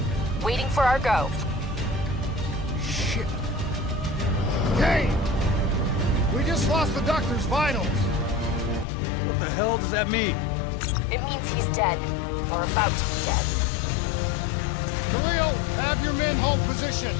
waiting for our go. Shit. Kane! We just lost the doctor's vitals. What the hell does that mean? It means he's dead, or about to be dead. Khalil, have your men hold position.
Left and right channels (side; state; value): right; drops out; at 8.8 s